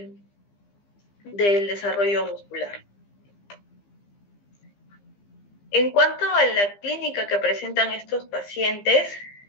desarrollo muscular. En cuanto a la clínica que presentan estos pacientes,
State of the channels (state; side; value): late; right; 15 ms